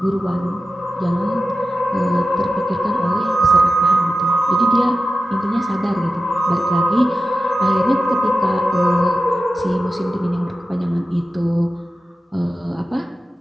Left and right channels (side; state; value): both; normal; correlation 0.93